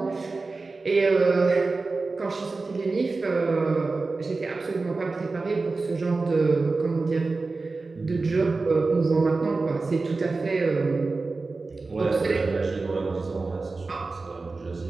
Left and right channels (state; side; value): quieter; left; 3.8 dB